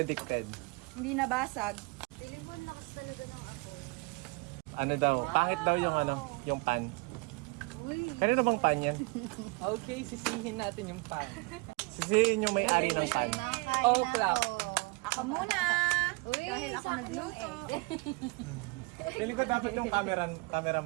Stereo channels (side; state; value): left; quieter; 27.5 dB